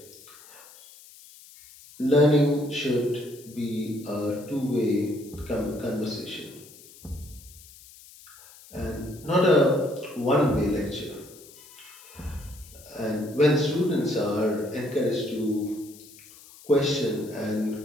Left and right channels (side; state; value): left; noise; hiss, 21 dB below the sound